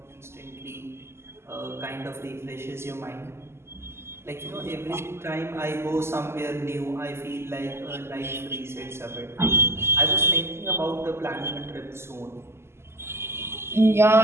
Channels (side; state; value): left; late; 0.12 ms